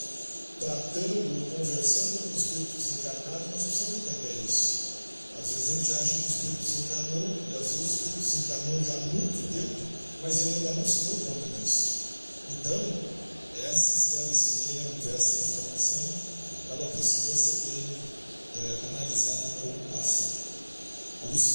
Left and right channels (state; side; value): inverted; both; correlation -1.00